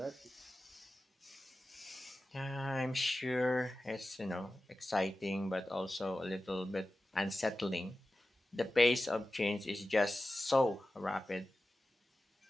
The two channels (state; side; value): normal; both; correlation 0.94